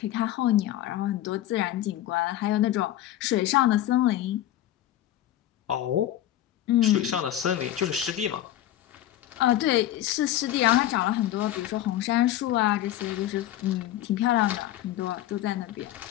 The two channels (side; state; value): right; quieter; 13.1 dB